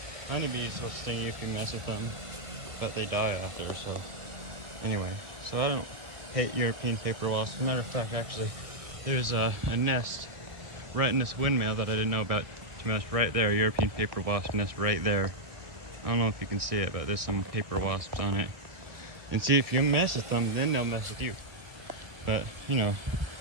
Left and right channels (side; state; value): left; late; 1.7 ms